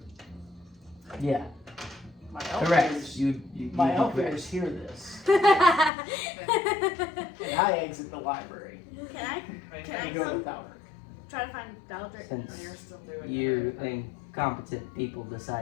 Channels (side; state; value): right; drops out; at 5.9 s